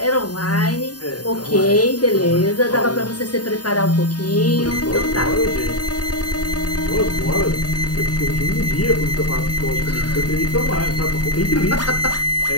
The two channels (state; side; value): late; right; 0.69 ms